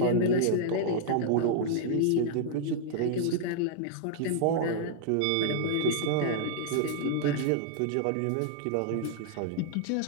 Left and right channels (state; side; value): different; both; correlation -0.01